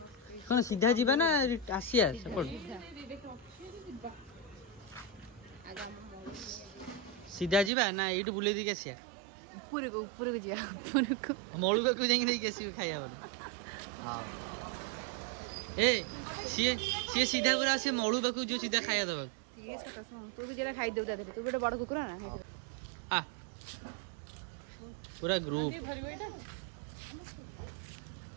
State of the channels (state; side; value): drops out; left; at 7.7 s